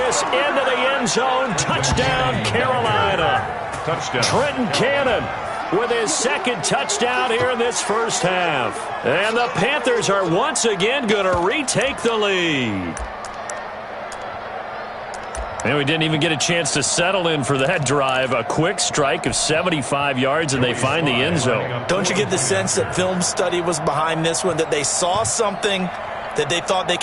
into the end zone. Touchdown, Carolina. Touchdown. Trenton Cannon with his second touchdown here in this first half. And the Panthers are once again going to retake the lead. And we didn't even get a chance to settle in for that drive. A quick strike of 75 yards, and they find the end zone. Don't you get the sense that film study was behind this one, that they saw something that they thought they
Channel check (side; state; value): both; identical; correlation 1.00